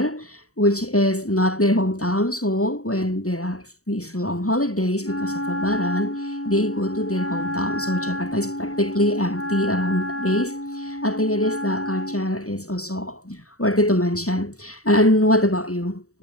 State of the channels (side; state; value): right; late; 0.65 ms